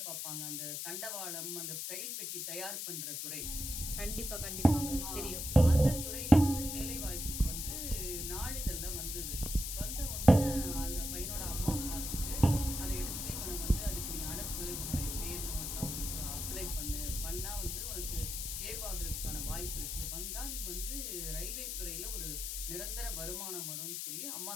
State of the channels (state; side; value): noise; left; hiss, 4 dB below the sound